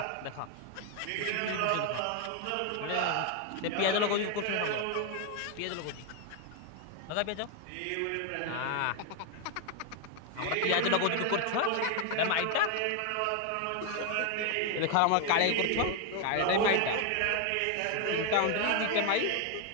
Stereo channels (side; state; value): both; different; correlation 0.01